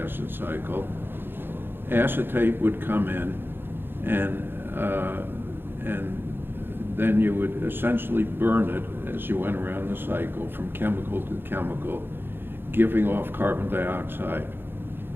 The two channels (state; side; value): late; left; 0.10 ms